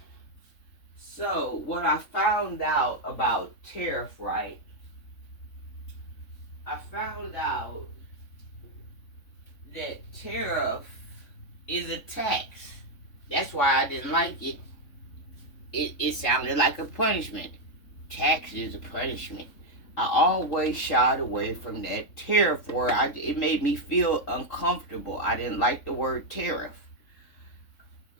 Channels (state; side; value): late; right; 3.5 ms